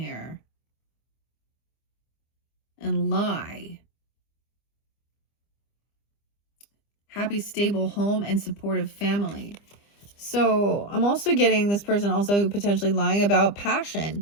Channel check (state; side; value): late; right; 25 ms